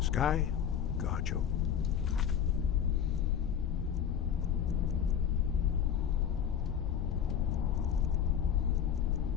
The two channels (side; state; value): right; quieter; 8.6 dB